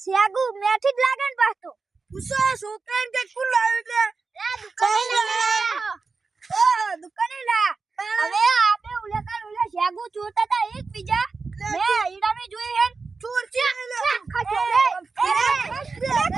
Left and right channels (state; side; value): quieter; left; 4.4 dB